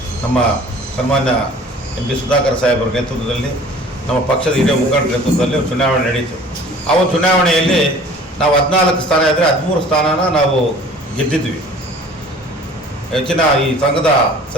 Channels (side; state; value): both; normal; correlation 0.48